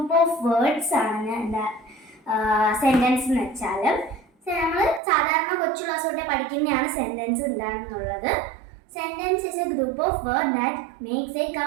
of words ആണ് എന്താ സെൻറ്റൻസ് എന്ന് വെച്ചാൽ. നമ്മൾ സാധാരണ കൊച്ചു ക്ലാസ് തൊട്ടേ പഠിക്കുന്നതാണ് സെൻറ്റൻസ് എന്താണെന്നുള്ളത്. Sentence is A group of word that makes A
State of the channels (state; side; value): drops out; left; at 5.0 s